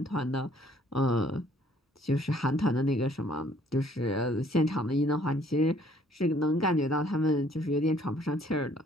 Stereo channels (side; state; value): both; normal; correlation 0.61